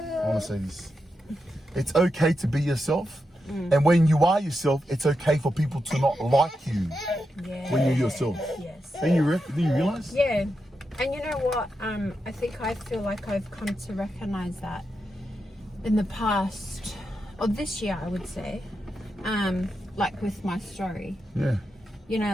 want to say this. It's okay to be yourself. And when you are yourself, it's okay for people to not like you when you're yourself. Yes. Do you realize? Yeah. And you know what? I feel like I've come to recognize that in the past, or this year, I would say, like with my story. Yeah. You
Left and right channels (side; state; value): both; normal; correlation 0.87